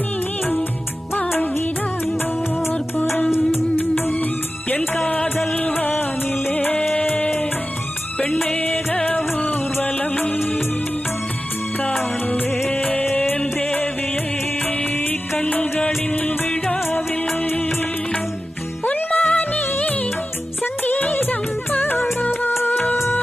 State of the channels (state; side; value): normal; both; correlation 0.94